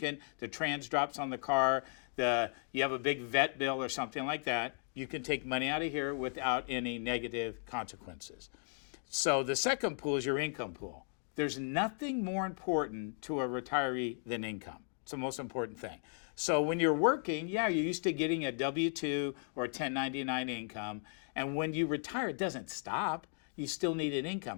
the trans drops on the car, you have a big vet bill or something like that, you can take money out of here without any negative consequences. So the second pool is your income pool. There's nothing more important to a retiree than income. It's the most important thing. So when you're working, you're used to getting a W-2 or a 1099 income. And when you retire, it doesn't stop. You still need an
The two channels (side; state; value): right; silent; 54 dB below the other